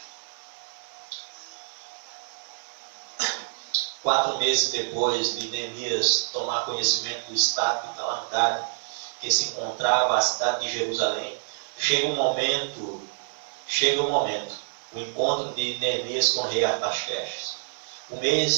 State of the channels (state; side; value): silent; left; digital silence